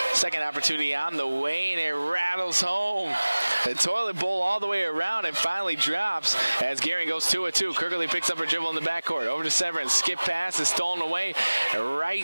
Second opportunity on the way, and it rattles home. The toilet bowl all the way around and finally drops as Gearing goes 2-2. Kirkley picks up her dribble in the backcourt. Over to Severance. Skip pass is stolen away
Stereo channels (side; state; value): both; inverted; correlation -1.00